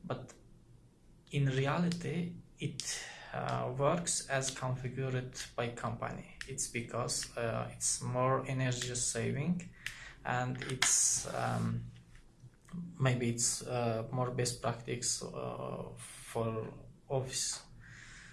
but in reality it works as configured by company. It's because it's more energy saving, and it's maybe it's more best practice for office.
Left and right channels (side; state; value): both; identical; correlation 1.00